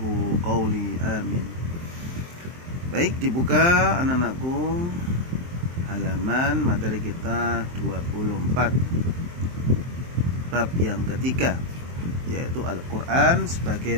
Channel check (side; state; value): left; late; 23 ms